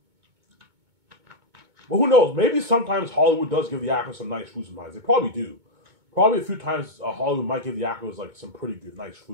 But who knows? Maybe sometimes Hollywood does give the actors some nice food sometimes. They probably do. Probably a few times Hollywood might give the actors like some pretty good, nice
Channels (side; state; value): left; late; 2.2 ms